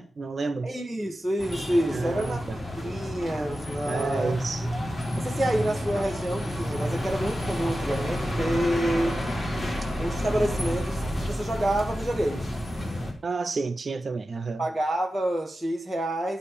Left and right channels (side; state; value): both; normal; correlation 0.92